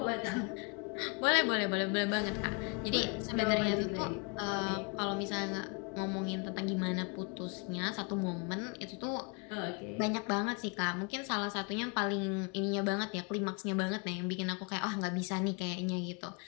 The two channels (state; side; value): quieter; right; 33.7 dB